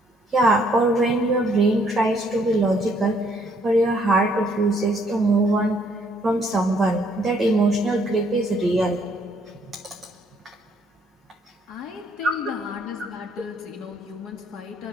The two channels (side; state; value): both; normal; correlation 0.67